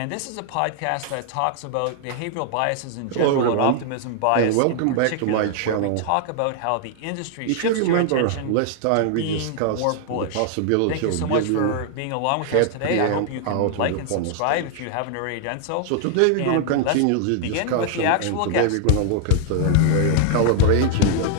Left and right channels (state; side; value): different; both; correlation 0.00